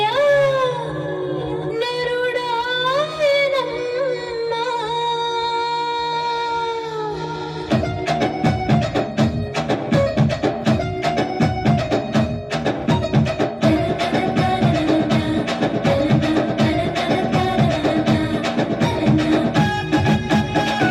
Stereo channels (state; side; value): identical; both; correlation 1.00